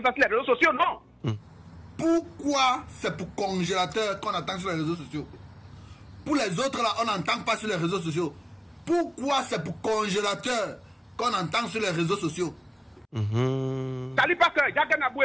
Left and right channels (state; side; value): identical; both; correlation 1.00